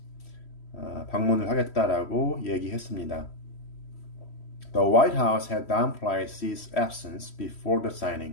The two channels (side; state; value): right; late; 3.1 ms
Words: 방문을 하겠다라고 얘기했습니다. The White House had downplayed Xi's absence before the